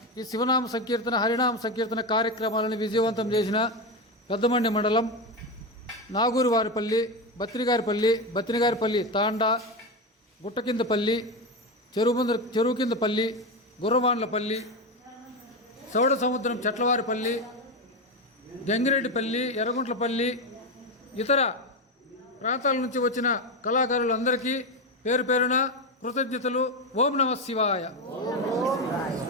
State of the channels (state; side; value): normal; both; correlation 0.15